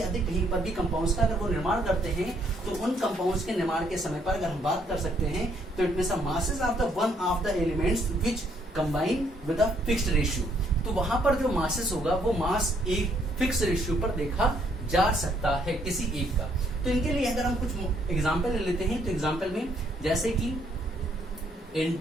अधिक कहीं पर भी कंपाउंड्स का अगर वो निर्माण करते हैं तो उन कंपाउंड्स के निर्माण के समय पर अगर हम बात कर सकते हैं तो it means masses of the one of the elements which combine with a fixed ratio. तो वहां पर जो मासेस होगा वो मास एक फिक्स रेशियो पर देखा जा सकता है किसी एक का। तो इनके लिए अगर हम कुछ एग्जांपल ले लेते हैं तो एग्जांपल में जैसे कि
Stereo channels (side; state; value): both; normal; correlation 0.69